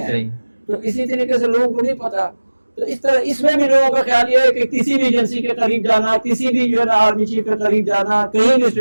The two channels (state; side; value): inverted; both; correlation -1.00